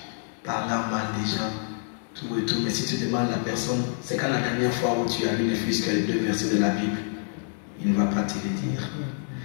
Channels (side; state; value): right; silent; 60 dB below the other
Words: parlant mal des gens, tout et tout. Mais si tu demandes à la personne, c'est quand la dernière fois où tu as lu ne fût-ce que les 2 versets de la Bible, il ne va pas te le dire.